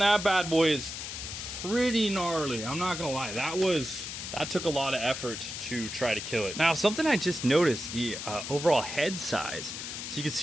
bad boy is pretty gnarly. I'm not gonna lie. That was that took a lot of effort to try to kill it. Now, something I just noticed, the overall head size. So you can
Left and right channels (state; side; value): noise; left; hiss, 7 dB below the sound